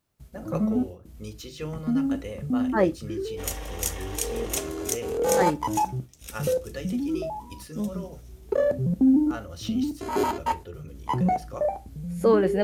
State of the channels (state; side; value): identical; both; correlation 1.00